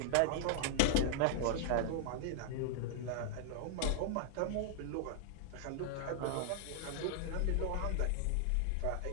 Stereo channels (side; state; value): both; different; correlation -0.01